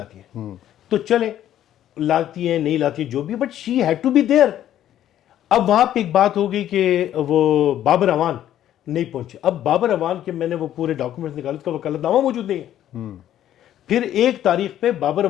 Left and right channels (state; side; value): quieter; right; 11.7 dB